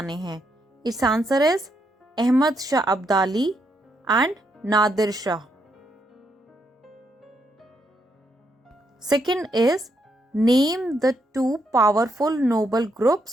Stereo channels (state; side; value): normal; both; correlation 0.78